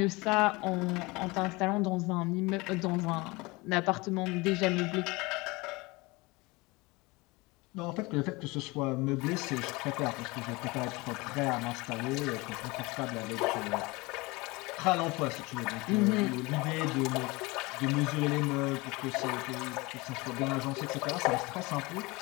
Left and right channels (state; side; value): quieter; right; 24.0 dB